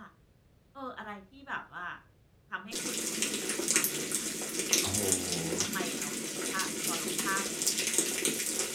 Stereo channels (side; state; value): both; identical; correlation 1.00